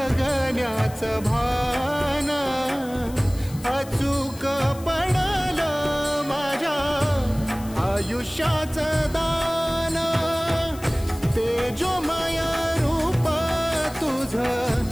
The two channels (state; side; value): noise; left; hiss, 19 dB below the sound